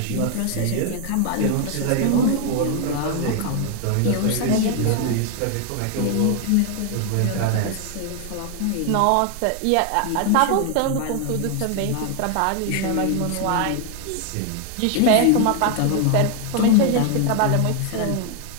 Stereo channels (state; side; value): different; both; correlation 0.00